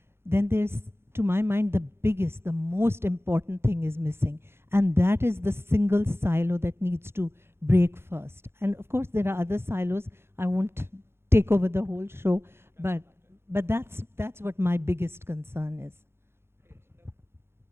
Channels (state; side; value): late; left; 0.12 ms